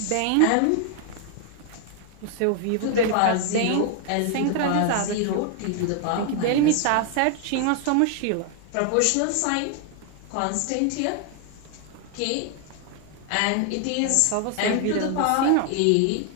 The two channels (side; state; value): both; different; correlation 0.00